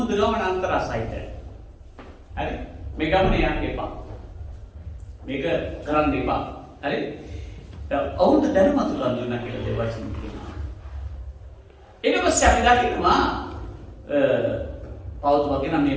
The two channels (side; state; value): both; identical; correlation 1.00